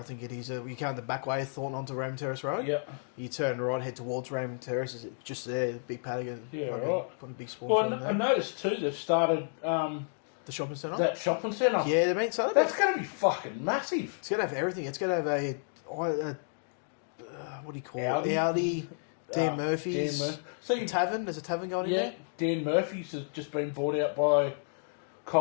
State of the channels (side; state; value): right; silent; digital silence